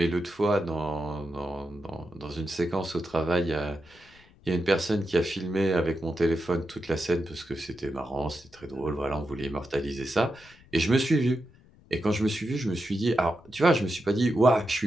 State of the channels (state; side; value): noise; left; rumble, 26 dB below the sound